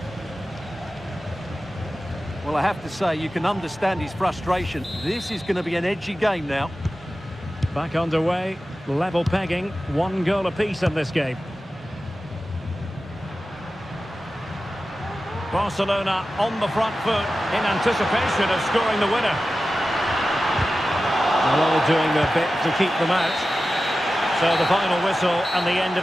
Well, I have to say, you can understand his frustration. This is going to be an edgy game now. Back underway, level pegging, 1 goal apiece in this game. Barcelona on the front foot in anticipation of scoring the winner. They're all doing their bit to keep them out. So the final whistle and the end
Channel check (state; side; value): normal; both; correlation 0.94